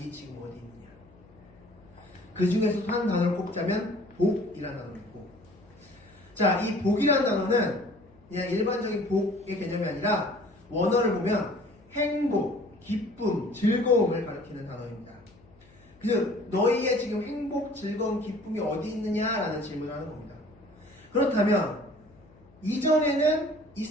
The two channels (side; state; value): left; noise; hum, 27 dB below the sound